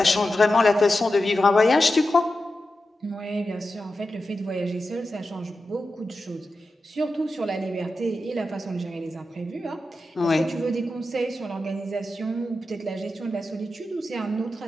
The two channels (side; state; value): both; normal; correlation 0.91